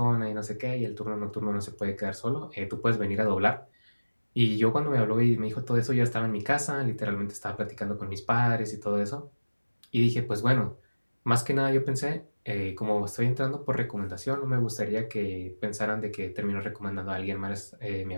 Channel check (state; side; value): inverted; both; correlation -1.00